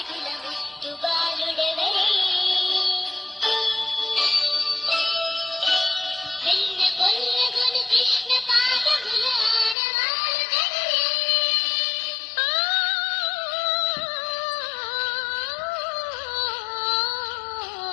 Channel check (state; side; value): drops out; right; at 9.8 s